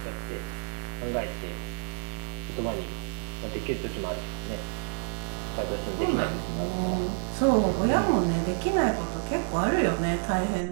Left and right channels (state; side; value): silent; left; digital silence